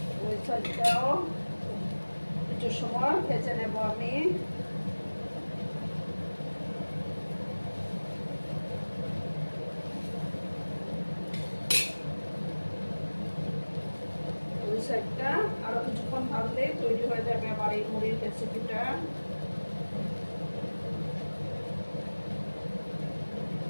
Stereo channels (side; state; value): both; inverted; correlation -1.00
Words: সাইডটাও কিছু সময় ভেজে নেব আমি। ওই সাইডটা আরো কিছুক্ষণ ভাজলে তৈরি হয়ে যাবে আমার এই মুড়ির রেসিপিটা।